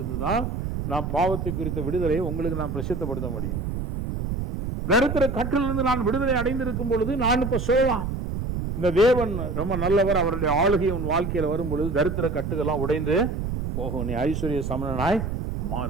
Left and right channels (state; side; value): noise; right; rumble, 3 dB below the sound